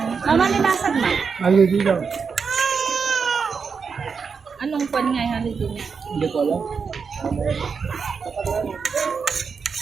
Mama, nilasag na. Ano dito? Anong pan nga yung holiday niya? Hindi ko alam.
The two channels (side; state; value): left; quieter; 5.7 dB